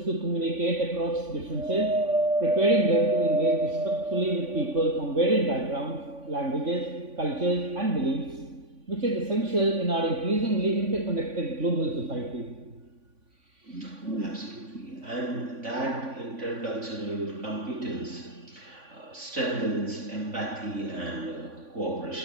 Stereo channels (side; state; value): left; late; 3.5 ms